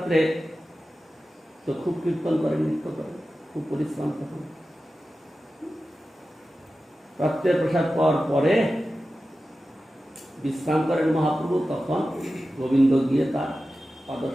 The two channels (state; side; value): normal; both; correlation 0.94